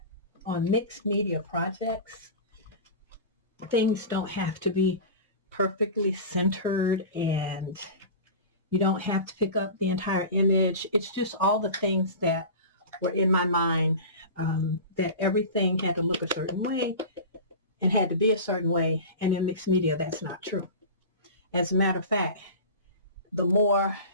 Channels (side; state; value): both; inverted; correlation -0.32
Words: on mixed media projects, things don't have to be perfectly centered, and you don't have to pick up the entire image. It's just all the things that were in my mind, that everything had to look a certain way and had to be a certain way. And in mixed media, that's not true. As a matter of fact, the more